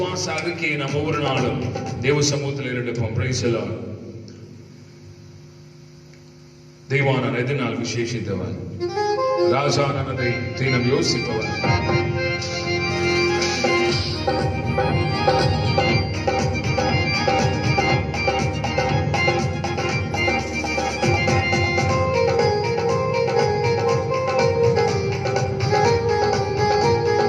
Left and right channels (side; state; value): both; identical; correlation 1.00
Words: அறிக்கையை நாம் ஒவ்வொரு நாளும் தேவ சமூகத்தில் எடுப்போம். Price the Lord. தெய்வானான் எதனால் விசேஷித்தவன், ராஜானதை தினம் யோசிப்பவன்.